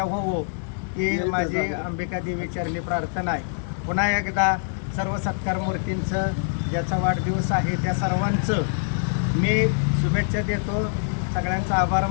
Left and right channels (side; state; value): right; silent; digital silence